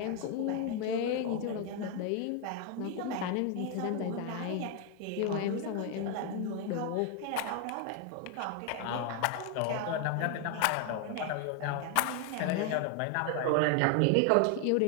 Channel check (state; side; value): different; both; correlation 0.01